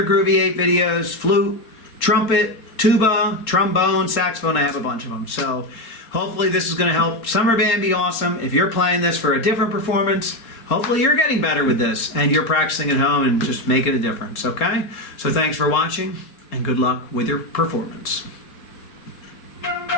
Groovy 8 videos, flute, trumpet, tuba, trombone, saxophone. I have a bunch of them. So hopefully this is going to help Summer Band be awesome. If you're playing this for a different performance, hopefully you're getting better with this and you're practicing at home and just making a difference, okay? So thanks for watching and good luck with your performance.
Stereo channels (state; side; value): late; right; 3.8 ms